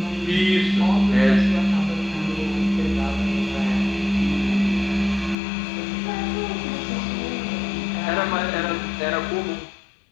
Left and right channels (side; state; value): right; drops out; at 5.4 s